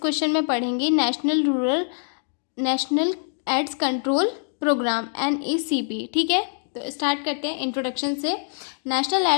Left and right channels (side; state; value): right; silent; digital silence